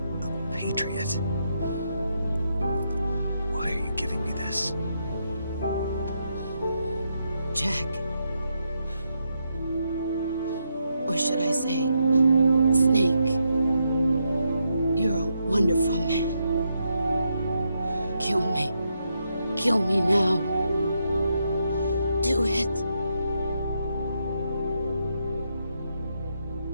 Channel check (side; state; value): both; inverted; correlation -0.81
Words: A patriot? Why are you giving me this? Jack. Or should I say, Snake. You're a wonderful man. Kill me. Kill me now. Do it.